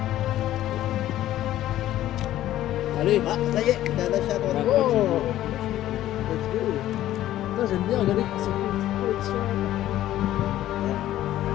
Allez. Ah, ça y est, t'as lâché à droite. Oh let's go. Putain j'aime bien regarder quand c'est une petite collection.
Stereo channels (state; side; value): quieter; right; 13.5 dB